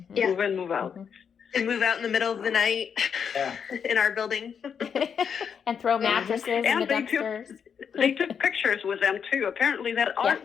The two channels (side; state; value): right; quieter; 7.1 dB